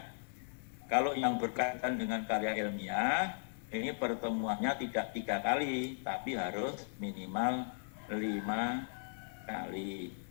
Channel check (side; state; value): right; silent; digital silence